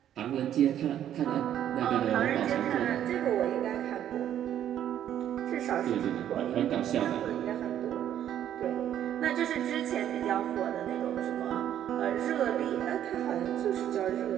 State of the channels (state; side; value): quieter; left; 10.7 dB